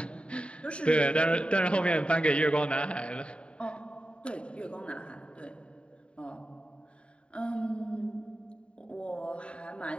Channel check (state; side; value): late; right; 0.057 ms